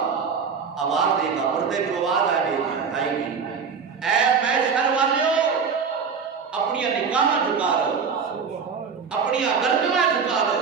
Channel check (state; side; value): quieter; left; 5.9 dB